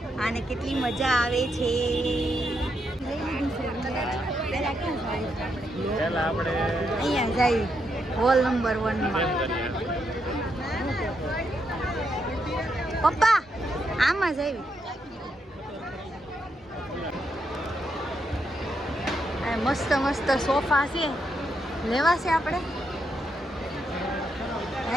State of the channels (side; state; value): both; normal; correlation 0.80